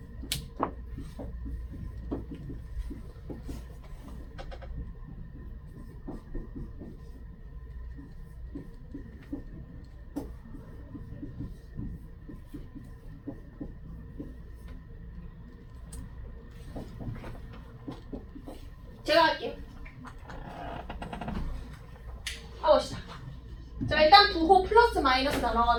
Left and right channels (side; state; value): both; identical; correlation 1.00